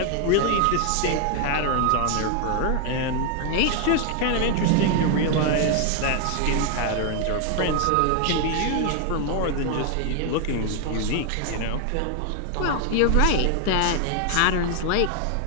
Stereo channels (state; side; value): different; both; correlation 0.01